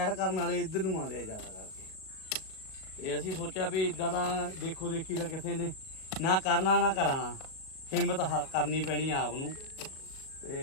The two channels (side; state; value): right; late; 37 ms